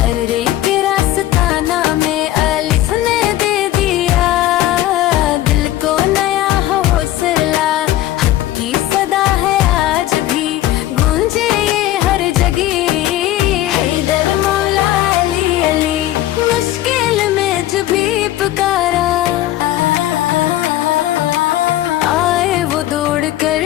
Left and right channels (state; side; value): quieter; right; 14.3 dB